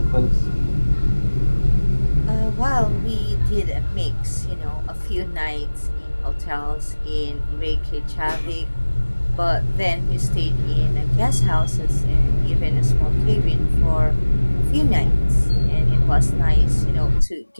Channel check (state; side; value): inverted; both; correlation -1.00